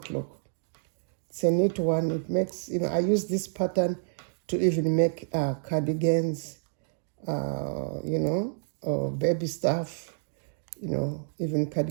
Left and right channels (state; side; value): silent; left; digital silence